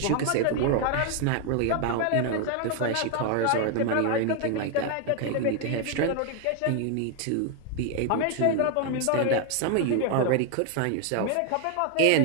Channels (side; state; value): both; different; correlation 0.00